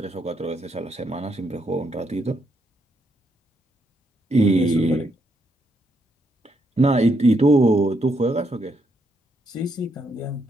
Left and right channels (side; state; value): both; normal; correlation 0.77